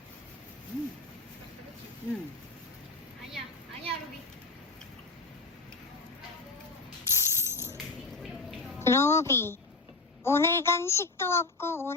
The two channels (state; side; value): quieter; right; 3.6 dB